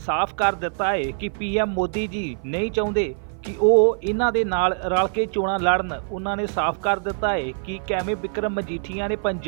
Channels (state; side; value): silent; left; 55 dB below the other